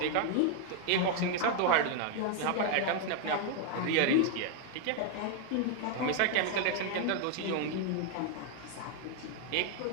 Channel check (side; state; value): both; different; correlation 0.00